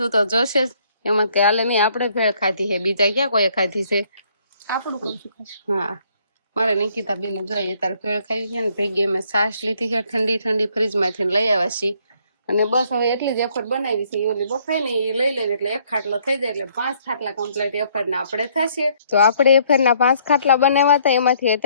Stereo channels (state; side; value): inverted; both; correlation -0.66